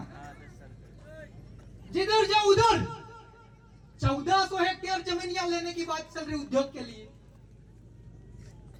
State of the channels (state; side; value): identical; both; correlation 1.00